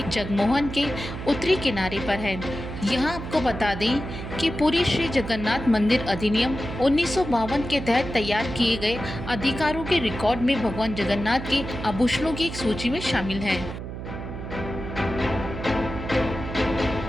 जगमोहन के उत्तरी किनारे पर है। यहाँ आपको बता दें कि पुरी श्री जगन्नाथ मंदिर अधिनियम 1952 के तहत तैयार किए गए अधिकारों के रिकॉर्ड में भगवान जगन्नाथ के आभूषणों की एक सूची में शामिल है।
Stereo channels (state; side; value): noise; right; hum, 8 dB below the sound